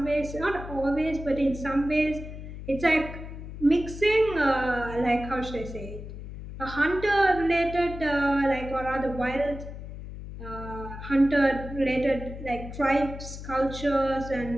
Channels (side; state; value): left; noise; hum, 11 dB below the sound